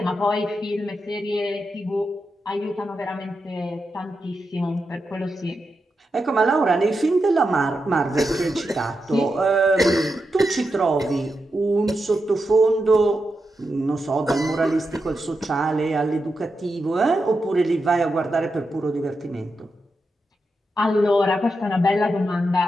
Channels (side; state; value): both; normal; correlation 0.87